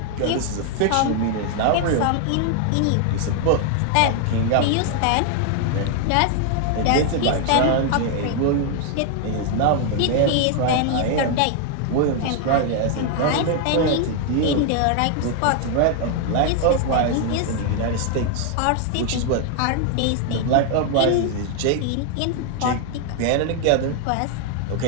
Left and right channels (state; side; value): different; both; correlation 0.00